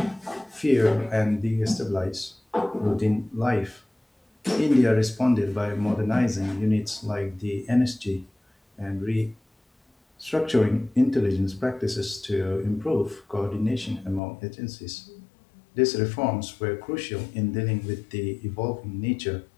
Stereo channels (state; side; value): drops out; right; at 14.2 s